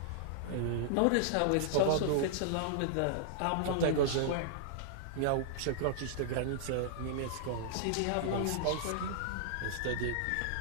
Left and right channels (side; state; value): both; different; correlation -0.01